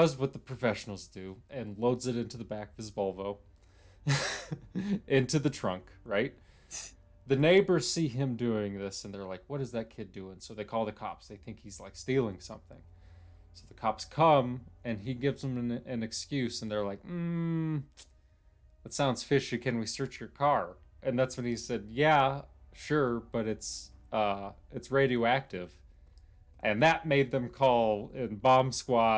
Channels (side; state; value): both; identical; correlation 1.00